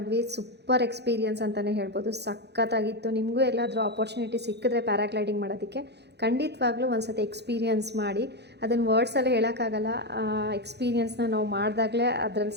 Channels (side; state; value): left; late; 0.49 ms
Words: ಸೂಪರ್ ಎಕ್ಸ್ಪೀರಿಯನ್ಸ್ ಅಂತಲೇ ಹೇಳ್ಬೋದು. ಸಖತ್ತಾಗಿತ್ತು. ನಿಮಗೂ ಎಲ್ಲಾದರೂ ಆಪರ್ಚುನಿಟಿ ಸಿಕ್ಕಿದ್ರೆ ಪ್ಯಾರಾಗ್ಲೈಡಿಂಗ್ ಮಾಡೋದಕ್ಕೆ ಖಂಡಿತವಾಗ್ಲೂ ಒಂದು ಸತಿ ಎಕ್ಸ್ಪೀರಿಯನ್ಸ್ ಮಾಡಿ. ಅದನ್ನು ವರ್ಡ್ಸಲ್ಲಿ ಹೇಳೋಕ್ಕಾಗಲ್ಲ. ಎಕ್ಸ್ಪೀರಿಯನ್ಸ್ನ ನಾವು ಮಾಡಿದಾಗಲೇ ಅದರಲ್ಲಿ